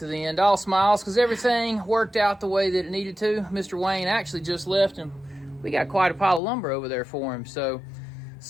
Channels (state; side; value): drops out; right; at 6.4 s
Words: the end. All smiles because everything worked out the way that it needed to. Mr. Wayne actually just left, and we got quite a pile of lumber over there for him. So